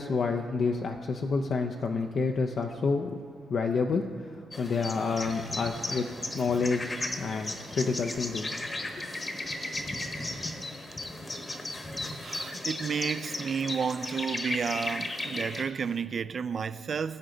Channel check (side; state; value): both; normal; correlation 0.81